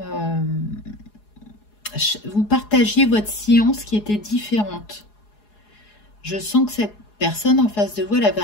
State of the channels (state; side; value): late; right; 4.8 ms